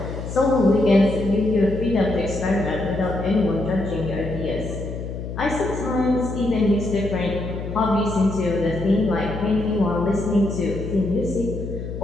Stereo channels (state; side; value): noise; left; hum, 7 dB below the sound